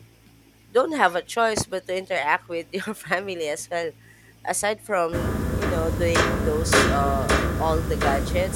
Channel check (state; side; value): identical; both; correlation 1.00